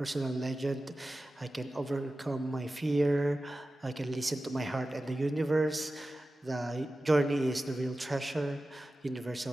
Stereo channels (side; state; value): both; normal; correlation 0.95